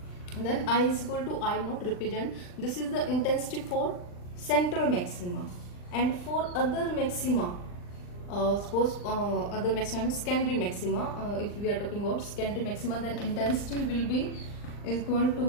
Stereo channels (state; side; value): late; right; 39 ms